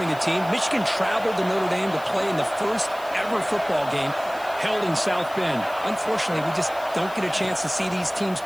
a team, Michigan traveled to Notre Dame to play in the first ever football game held in South Bend. Unfortunately, we just don't get a chance to see these teams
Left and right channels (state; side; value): noise; left; hiss, 21 dB below the sound